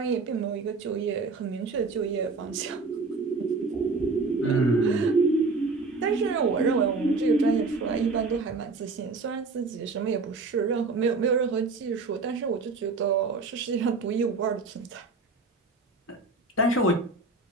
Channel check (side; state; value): left; quieter; 3.9 dB